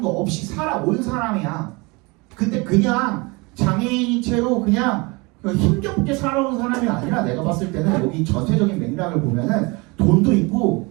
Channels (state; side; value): quieter; left; 26.8 dB